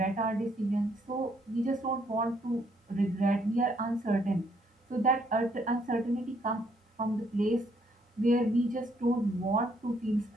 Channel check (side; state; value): both; normal; correlation 0.70